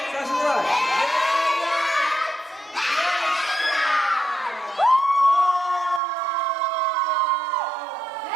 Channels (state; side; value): drops out; left; at 6.0 s